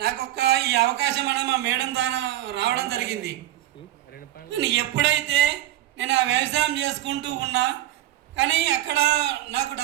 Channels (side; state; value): left; quieter; 14.0 dB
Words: నాకు ఈ అవకాశం అనేది మా మేడం ద్వారా రావడం జరిగింది. ఎప్పుడైతే నేను ఆ వ్యవసాయం చేసుకుంటూ ఉన్నా కానీ అక్కడ నాకు